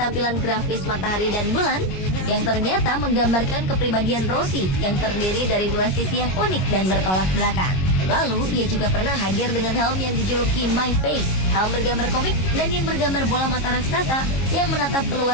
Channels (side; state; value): right; late; 22 ms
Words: grafis matahari dan bulan yang ternyata menggambarkan kepribadian Rossi yang terdiri dari dua sisi yang unik dan bertolak belakang. Lalu, ia juga pernah hadir dengan helm yang dijuluki My Face, helm bergambar komik dan yang bergambar bola mata raksasa yang menatap